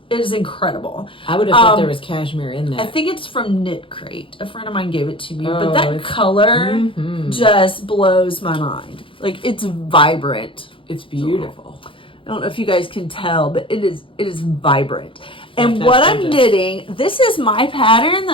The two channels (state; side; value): late; right; 0.25 ms